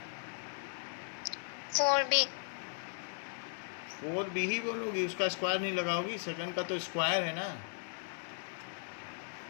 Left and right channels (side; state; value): right; silent; digital silence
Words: 4b 4b ही बोलोगी, उसका स्क्वायर नहीं लगाओगी, सेकंड का तो स्क्वायर है ना।